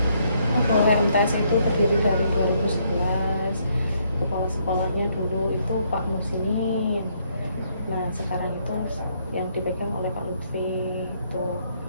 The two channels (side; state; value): both; inverted; correlation -0.71